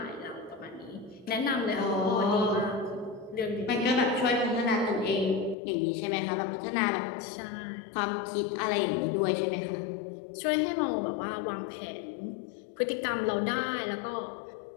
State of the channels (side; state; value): right; drops out; at 5.6 s